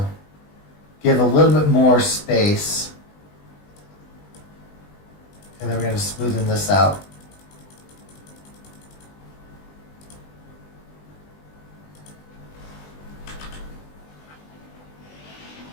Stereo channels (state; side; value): late; right; 20 ms